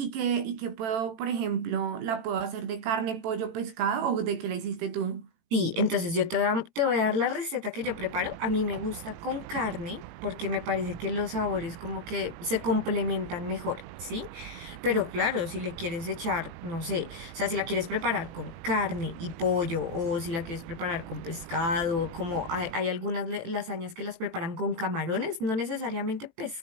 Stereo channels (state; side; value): late; left; 18 ms